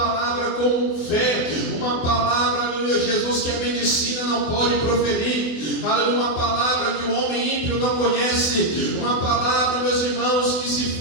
com fé, uma palavra, aleluia Jesus, que a medicina não pode proferir, aleluia, uma palavra que o homem ímpio não conhece, uma palavra, meus irmãos, que se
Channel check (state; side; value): late; right; 24 ms